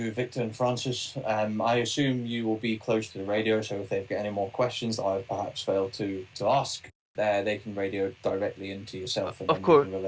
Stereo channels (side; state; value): both; identical; correlation 1.00